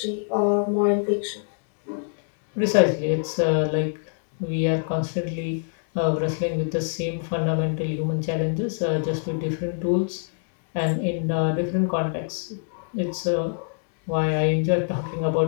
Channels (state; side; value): silent; right; digital silence